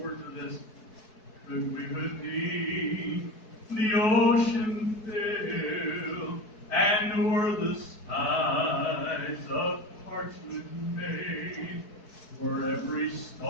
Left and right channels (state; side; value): late; right; 4.7 ms